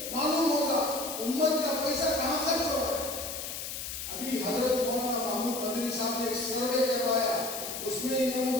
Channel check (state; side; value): noise; left; hiss, 6 dB below the sound